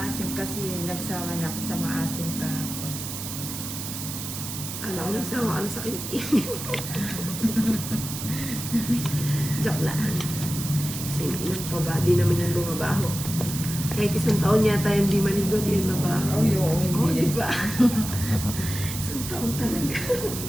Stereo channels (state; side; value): noise; right; hiss, 7 dB below the sound